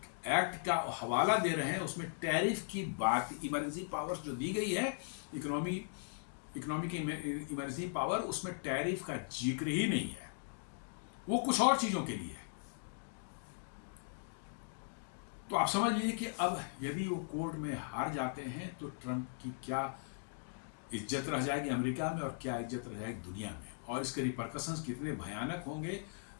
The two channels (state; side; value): silent; right; digital silence